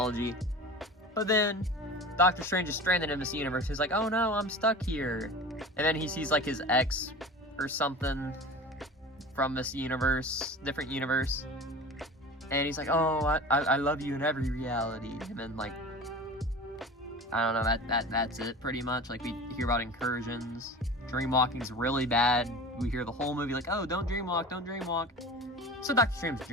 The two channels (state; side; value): normal; both; correlation 0.35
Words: But then, Doctor Strange is stranded in this universe. He's like, oh no, I'm stuck here. And then he sees, like, his ex or something from this universe, different universe. And he's like, oh, I love you in every reality. And then, like, I don't know, that's it pretty much. Like, we hear about incursions. Dreamwalking's really bad. We hear the whole movie like, oh, don't dreamwalk, don't dreamwalk. So Doctor Strange